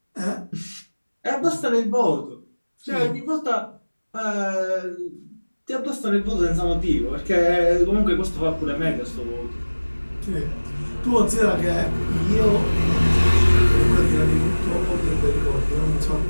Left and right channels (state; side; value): inverted; both; correlation -1.00